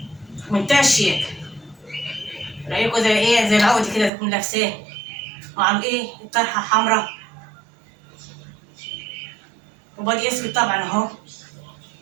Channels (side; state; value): left; drops out; at 4.1 s